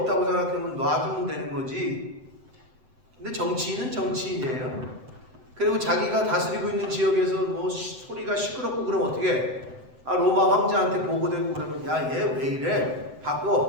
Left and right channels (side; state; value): left; late; 7.8 ms